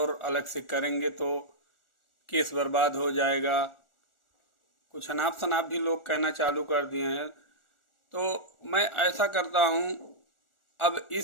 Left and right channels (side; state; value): right; late; 1.4 ms